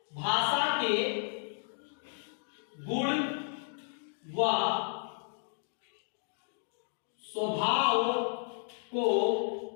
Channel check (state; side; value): silent; right; 56 dB below the other